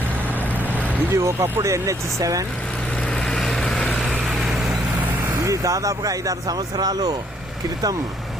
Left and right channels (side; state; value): both; normal; correlation 0.68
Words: ఇది ఒకప్పుడు NH7. ఇది దాదాపుగా 5-6 సంవత్సరాలు క్రితం